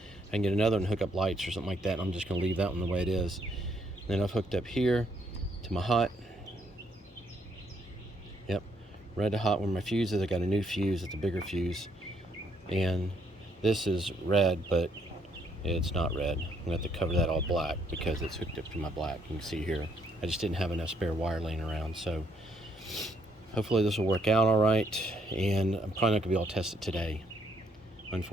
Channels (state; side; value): normal; both; correlation 0.71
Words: I can get another and hook up lights or something like that. And I'm just gonna leave that one the way it is. And then I've hooked up here to my hot. Yep, red to hot where my fuse is. I got a new fuse. It's a bigger fuse. And this is red, but it's not red. I'm gonna have to cover that all black because it's hooked up to my black. You can see here, I just didn't have enough spare wire laying around. So hopefully this will work out all right. And I'm probably not gonna be able to test it today.